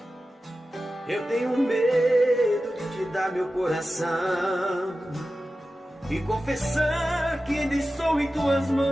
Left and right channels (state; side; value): normal; both; correlation 0.94